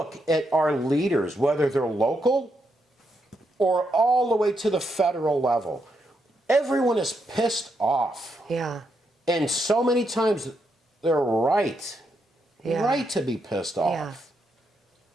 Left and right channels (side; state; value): both; normal; correlation 0.80